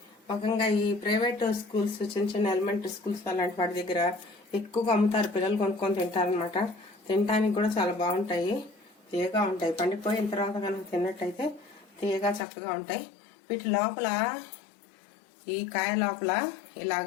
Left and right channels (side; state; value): right; drops out; at 12.4 s